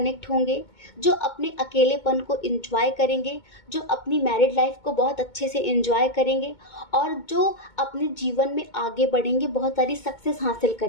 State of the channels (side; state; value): right; late; 2.2 ms